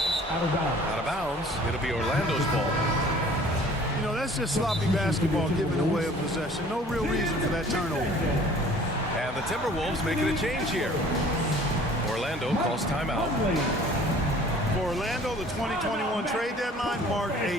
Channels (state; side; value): normal; both; correlation 0.51